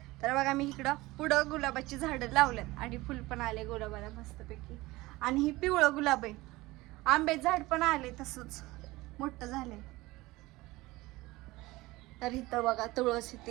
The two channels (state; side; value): quieter; left; 20.0 dB